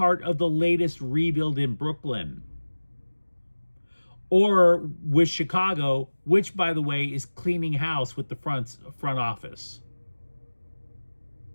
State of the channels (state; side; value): inverted; both; correlation -1.00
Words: of the latest rebuild in Brooklyn? Or with Chicago, which, by the way, is cleaning house with the front office.